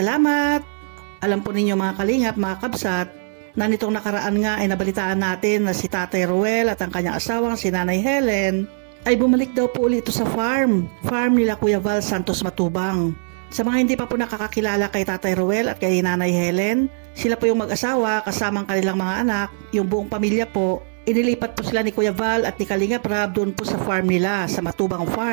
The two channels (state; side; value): silent; left; digital silence